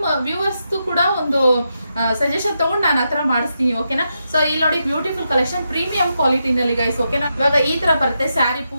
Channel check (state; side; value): inverted; both; correlation -0.84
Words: ವ್ಯೂವರ್ಸ್ದು ಕೂಡ ಒಂದು ಸಜೆಷನ್ ತಗೊಂಡು ನಾನು ಹತ್ರ ಮಾಡಿಸ್ತೀನಿ. ಓಕೆನಾ, ಸೊ ಇಲ್ಲಿ ನೋಡಿ ಬ್ಯೂಟಿಫುಲ್ ಕಲೆಕ್ಷನ್ ಪ್ರೀಮಿಯಂ ಕ್ವಾಲಿಟಿನಲ್ಲಿ ಗೈಸ್. ಓಕೆನಾ, ಇವಾಗ ಈ ತರ ಬರುತ್ತೆ ಸ್ಯಾರಿ